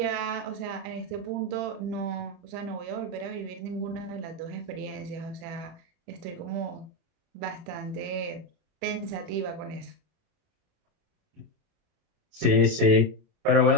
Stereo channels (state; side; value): late; left; 30 ms